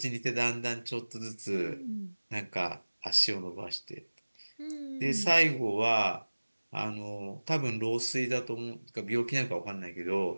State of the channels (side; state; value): both; inverted; correlation -1.00